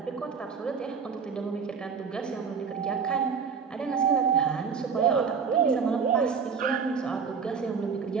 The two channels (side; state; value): left; quieter; 6.0 dB